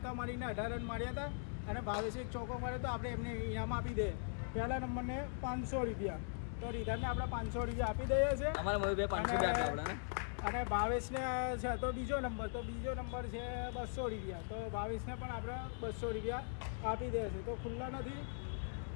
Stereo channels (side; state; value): right; silent; digital silence